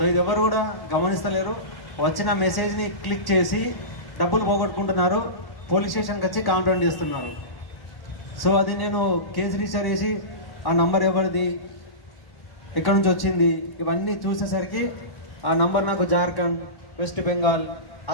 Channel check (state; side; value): late; right; 1.1 ms